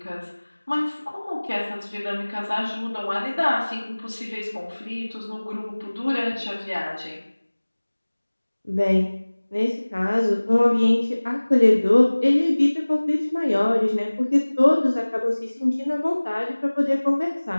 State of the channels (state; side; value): inverted; both; correlation -1.00